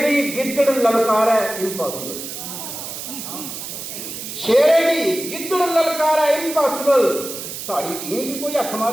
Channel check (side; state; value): right; noise; hiss, 8 dB below the sound